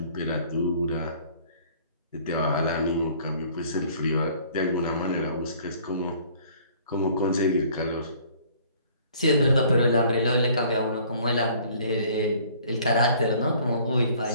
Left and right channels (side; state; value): both; inverted; correlation -0.55